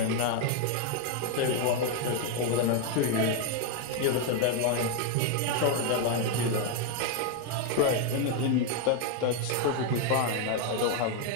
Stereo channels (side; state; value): both; different; correlation 0.01